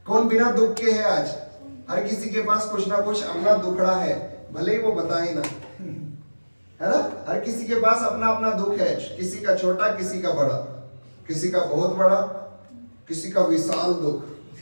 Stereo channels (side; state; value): both; inverted; correlation -1.00